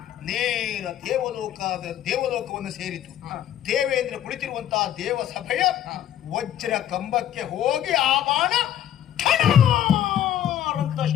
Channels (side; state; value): right; quieter; 11.1 dB